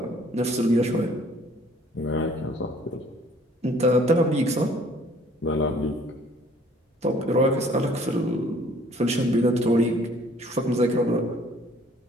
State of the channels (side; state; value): both; normal; correlation 0.57